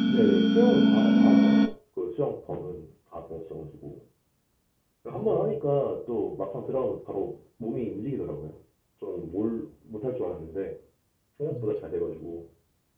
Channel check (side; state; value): both; identical; correlation 1.00